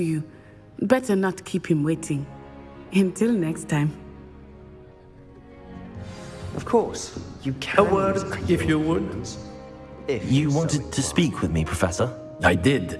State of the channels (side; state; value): both; identical; correlation 1.00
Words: you. Better not keep him waiting. Until next time. Of course, you can. A word, if you would. You wanted to speak with me, Professor? I did.